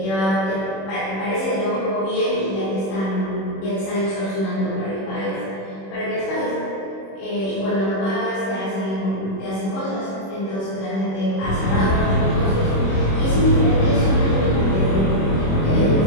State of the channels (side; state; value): right; late; 26 ms